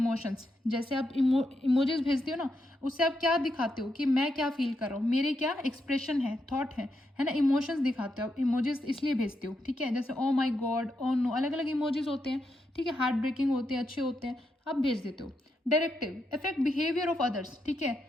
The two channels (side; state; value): both; normal; correlation 0.82